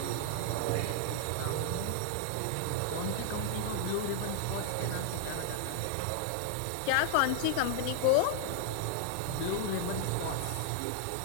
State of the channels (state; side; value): different; both; correlation 0.00